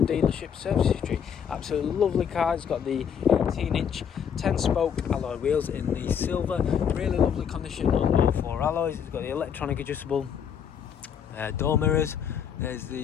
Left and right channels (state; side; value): quieter; right; 7.9 dB